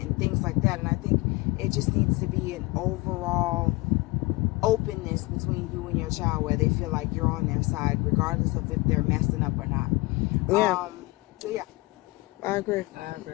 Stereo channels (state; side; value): quieter; right; 23.0 dB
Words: things like that. And I think it just needs to be an overall openness between you and your child where they feel like you're on their side regardless of if they're messing up or not. Yeah. So yeah, I agree. I agree